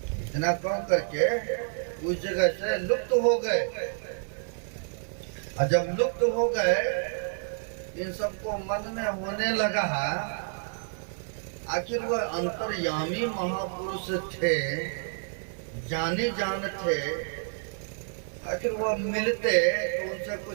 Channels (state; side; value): silent; left; digital silence